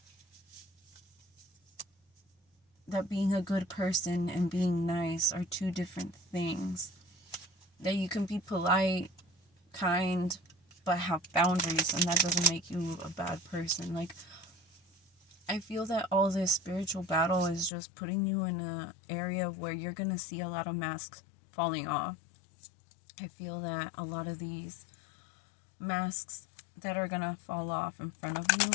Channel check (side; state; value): right; drops out; at 17.7 s